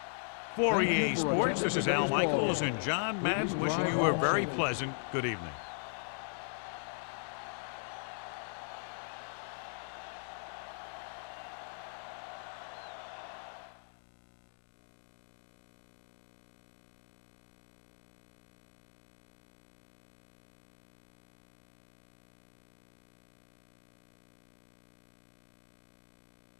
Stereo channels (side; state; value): right; silent; digital silence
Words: For EA Sports, this is Al Michaels and John Madden wishing you a very pleasant good evening.